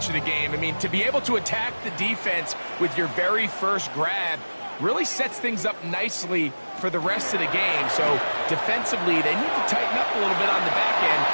of the game. I mean, to be able to attack the defense with your very first grab really sets things up nicely for the rest of the game. So defensively, they need to tighten up a little bit on the back end.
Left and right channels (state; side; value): inverted; both; correlation -1.00